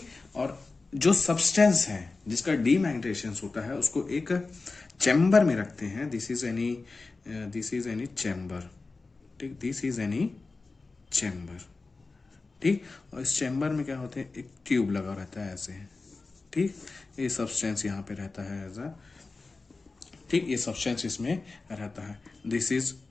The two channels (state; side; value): quieter; right; 3.8 dB